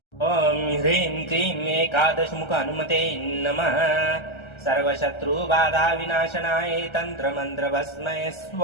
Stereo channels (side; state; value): right; late; 1.3 ms